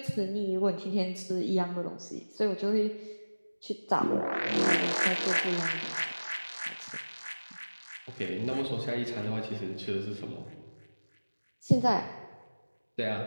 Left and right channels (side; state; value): both; inverted; correlation -1.00